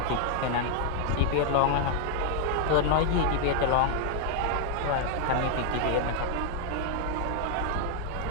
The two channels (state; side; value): different; both; correlation 0.00